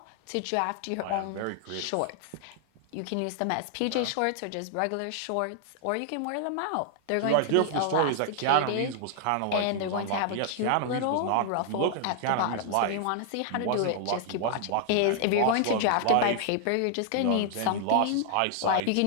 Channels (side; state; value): both; different; correlation 0.00